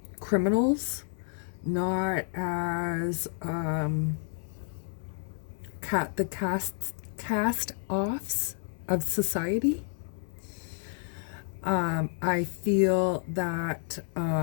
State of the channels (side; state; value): right; silent; 58 dB below the other